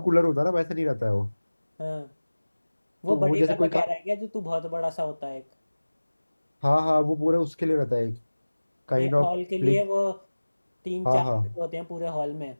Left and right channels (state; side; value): inverted; both; correlation -1.00